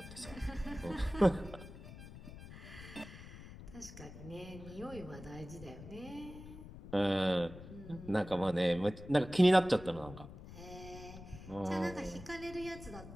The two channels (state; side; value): noise; left; rumble, 14 dB below the sound